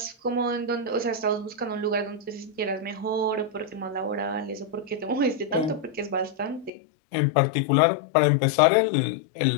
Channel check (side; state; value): right; drops out; at 6.7 s